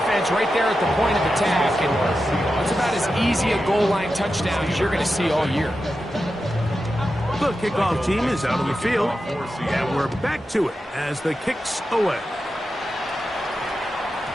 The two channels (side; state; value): both; normal; correlation 0.90